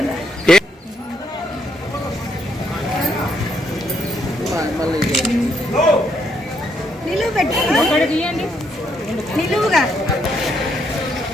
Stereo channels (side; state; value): both; normal; correlation 0.74